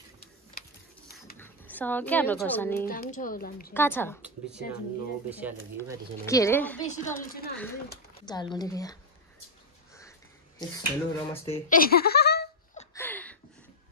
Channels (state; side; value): normal; both; correlation -0.02